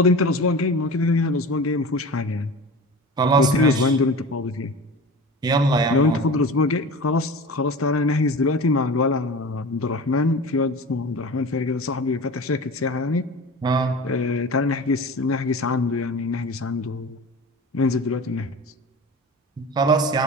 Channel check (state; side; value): normal; both; correlation 0.34